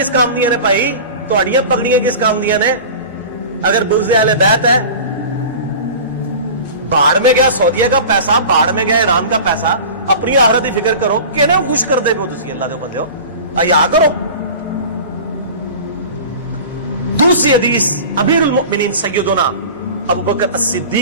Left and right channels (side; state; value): both; inverted; correlation -0.36